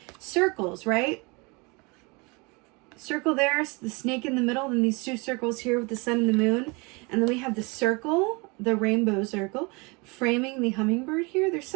Circles, right? Circle there, the snake in the middle, and these two circles here with the sun and the moon. And then we have the circle, the rainbow circle, framing the hummingbird here. There's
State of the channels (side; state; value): left; quieter; 28.3 dB